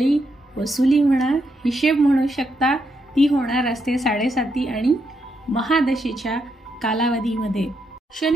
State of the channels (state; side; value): normal; both; correlation 0.80